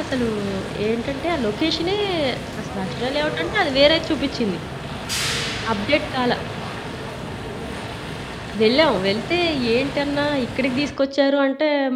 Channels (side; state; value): both; identical; correlation 1.00